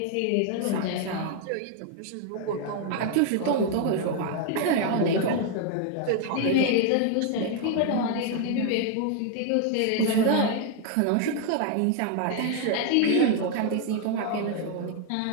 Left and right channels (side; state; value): both; different; correlation 0.00